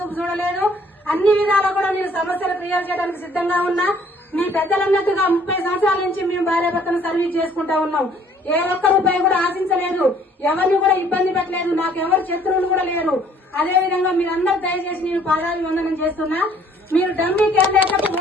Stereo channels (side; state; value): both; normal; correlation 0.59